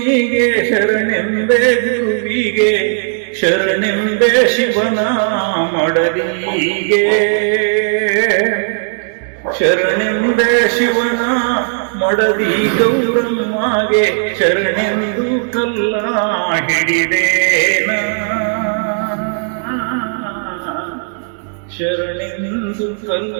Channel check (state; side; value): silent; left; 66 dB below the other